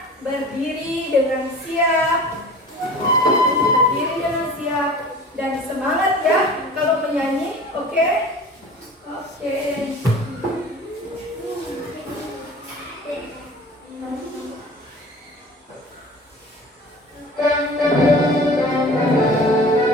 berdiri dengan siap. Berdiri dengan siap dan semangat ya kalau menyanyi, oke? Oke.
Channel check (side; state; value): both; normal; correlation 0.41